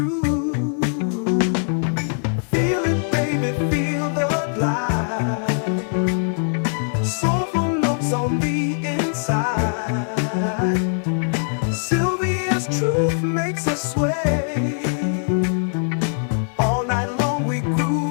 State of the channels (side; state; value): right; silent; 64 dB below the other